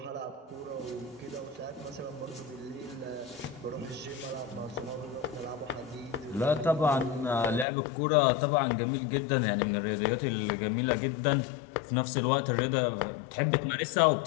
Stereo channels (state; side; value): drops out; right; at 7.7 s